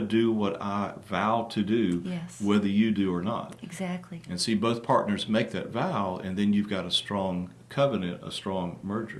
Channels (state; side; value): identical; both; correlation 1.00